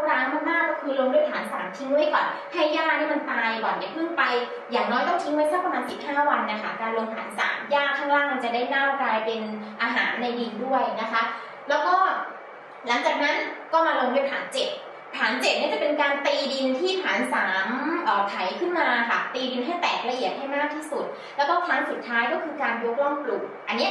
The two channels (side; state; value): both; identical; correlation 1.00